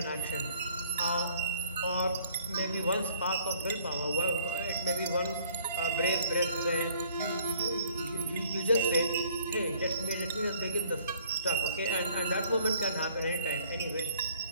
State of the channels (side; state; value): both; inverted; correlation -0.60